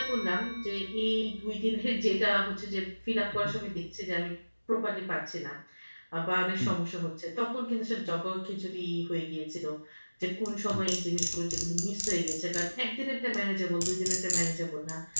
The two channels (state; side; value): inverted; both; correlation -1.00